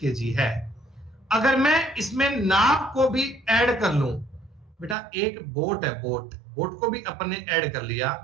है। अगर मैं इसमें नाव को भी ऐड कर लूं बेटा, एक बोट है, बोट को भी अपन ने ऐड कर लिया,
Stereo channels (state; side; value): drops out; left; at 5.0 s